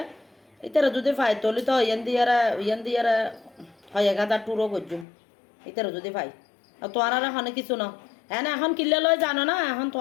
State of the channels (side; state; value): right; drops out; at 5.1 s